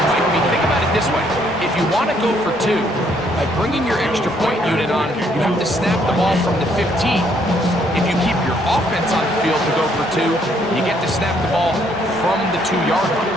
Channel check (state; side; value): normal; both; correlation 0.68